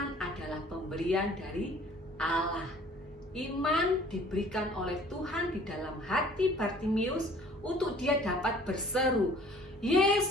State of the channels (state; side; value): normal; both; correlation 0.52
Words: adalah pemberian dari Allah. Iman diberikan oleh Tuhan di dalam hati Bartimius untuk dia dapat berseru,